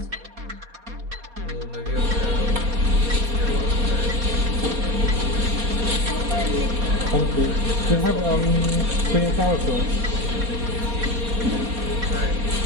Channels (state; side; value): late; left; 4.2 ms